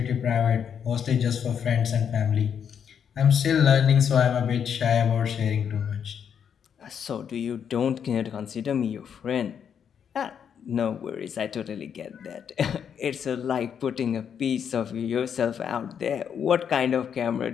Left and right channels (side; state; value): right; quieter; 7.9 dB